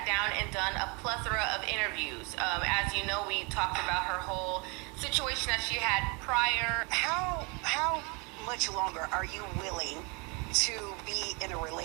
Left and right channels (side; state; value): left; quieter; 30.3 dB